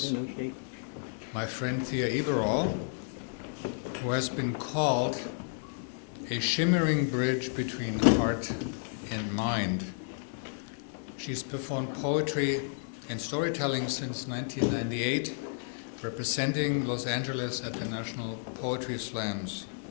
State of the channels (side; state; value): right; silent; digital silence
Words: my friend Thea Iberall, who has been called a shimmering bridge between heart and mind. She's performed poetry and storytelling since 1998, representing Los Angeles at the National Poetry Slams.